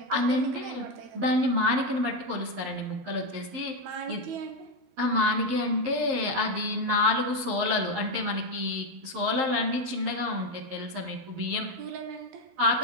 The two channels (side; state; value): left; late; 12 ms